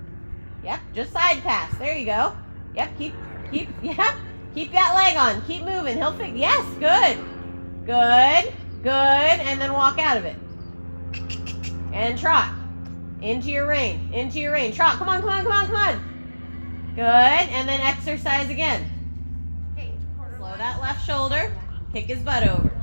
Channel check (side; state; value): both; inverted; correlation -1.00